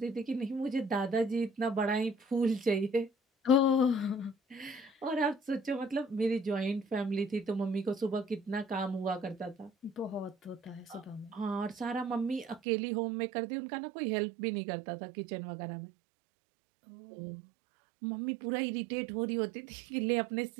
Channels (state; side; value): drops out; left; at 12.6 s